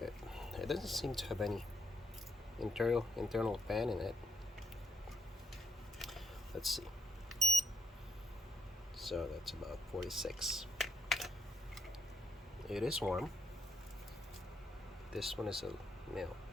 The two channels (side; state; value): both; normal; correlation 0.77